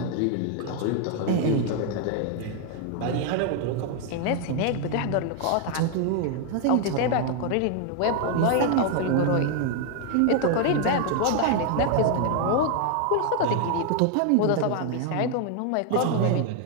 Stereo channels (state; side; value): different; both; correlation 0.00